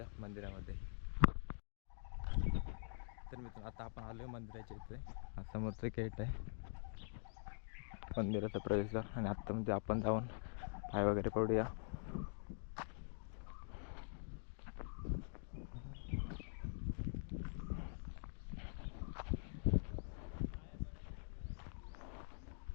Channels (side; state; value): right; silent; digital silence